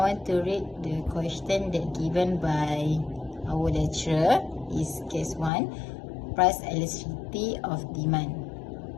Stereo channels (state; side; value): drops out; right; at 5.5 s